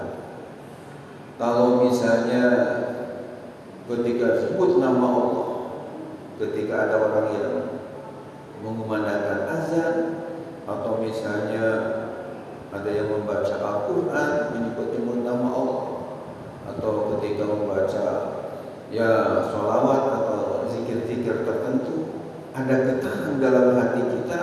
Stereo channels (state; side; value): identical; both; correlation 1.00